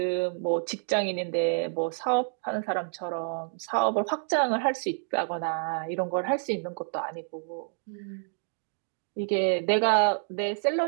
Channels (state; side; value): silent; left; digital silence